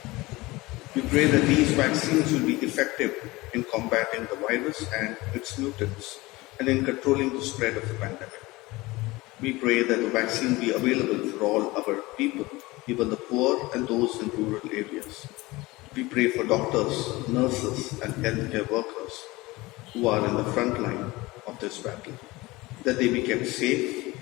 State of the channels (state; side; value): quieter; right; 21.0 dB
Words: We pray that these vaccines will be effective in combating the virus and its mutants and in controlling the spread of the pandemic. We pray that the vaccine be available for all our people, even the poor and those in rural areas. We pray for doctors, nurses, and healthcare workers who are in the front line of this battle, that they be kept safe